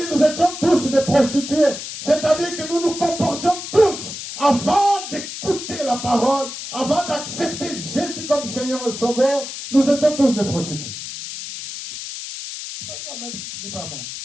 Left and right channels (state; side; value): noise; left; hiss, 9 dB below the sound